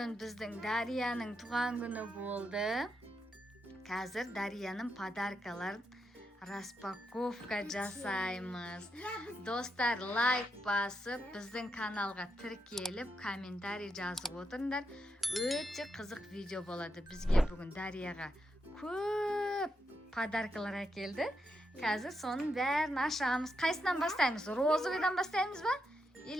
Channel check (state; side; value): normal; both; correlation 0.83